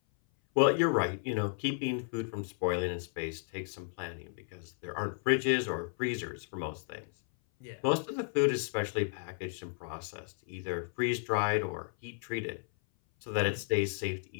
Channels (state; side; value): silent; right; 55 dB below the other